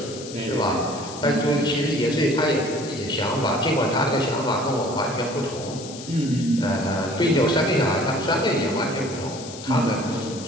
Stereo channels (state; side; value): noise; left; hiss, 13 dB below the sound